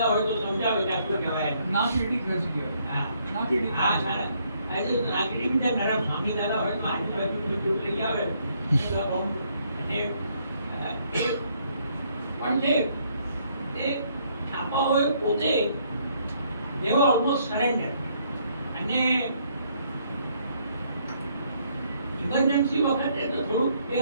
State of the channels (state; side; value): inverted; both; correlation -0.69